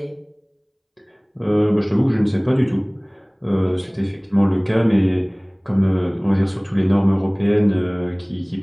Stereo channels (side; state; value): both; identical; correlation 1.00